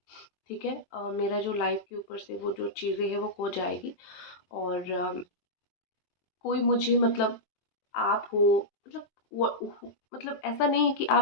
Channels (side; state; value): right; late; 23 ms